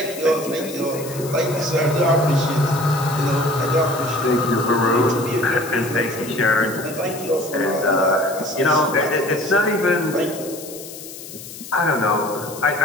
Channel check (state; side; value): noise; left; hiss, 14 dB below the sound